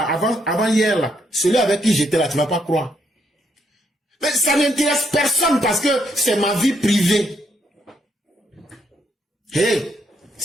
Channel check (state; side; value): normal; both; correlation 0.74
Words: avant hier là, celui avec qui j'étais là, tu ne vas pas croire. Mais ça n'intéresse personne parce que c'est ma vie privée. Hey,